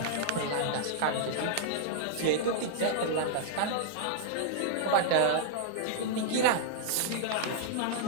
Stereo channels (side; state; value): both; different; correlation -0.01